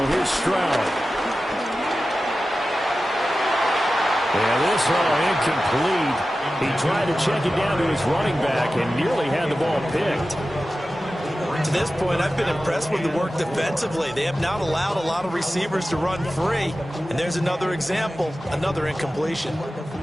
Here's Stroud. And this incomplete. He tried to check it down to his running back and nearly had the ball picked. To this point, I've been impressed with the work defensively. They have not allowed a lot of receivers to run free. And there's another example, another incompletion.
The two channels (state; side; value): normal; both; correlation 0.94